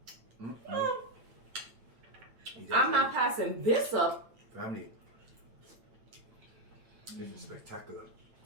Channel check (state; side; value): late; left; 8.8 ms